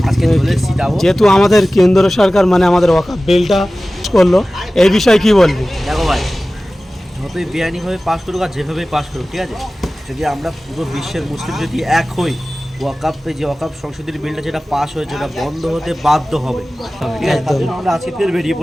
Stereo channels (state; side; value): normal; both; correlation 0.97